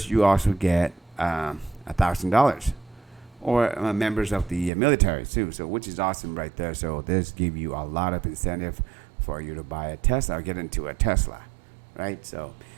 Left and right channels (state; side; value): drops out; left; at 4.7 s